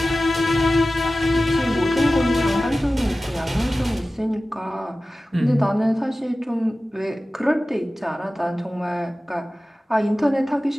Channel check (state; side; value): normal; both; correlation 0.96